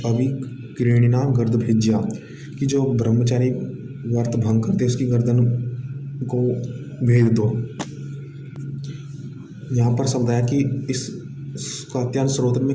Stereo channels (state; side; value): identical; both; correlation 1.00